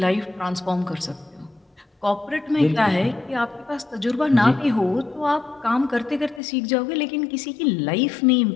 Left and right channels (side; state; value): right; drops out; at 6.4 s